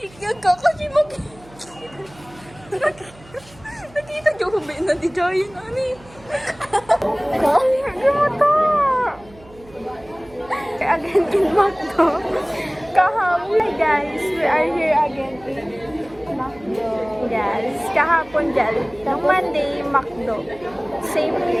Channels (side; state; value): right; noise; hum, 24 dB below the sound